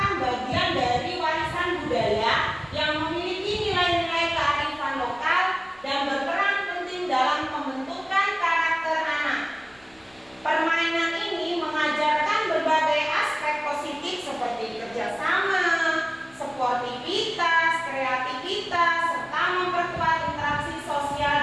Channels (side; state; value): left; noise; rumble, 29 dB below the sound